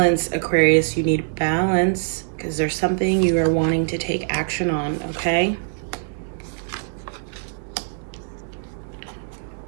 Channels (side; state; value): left; silent; digital silence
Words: Aquarius. You need balance because there's something you are wanting to take action on, okay?